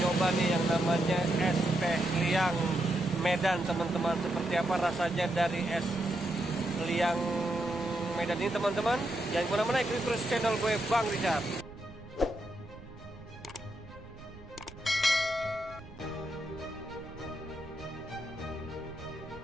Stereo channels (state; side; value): noise; right; rumble, 17 dB below the sound